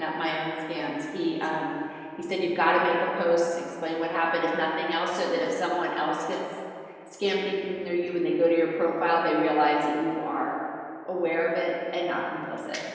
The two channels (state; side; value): identical; both; correlation 1.00